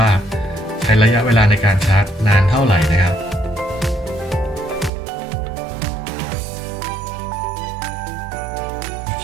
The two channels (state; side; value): drops out; left; at 4.9 s